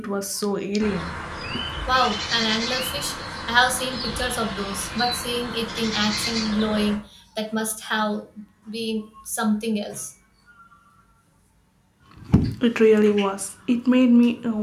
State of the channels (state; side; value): identical; both; correlation 1.00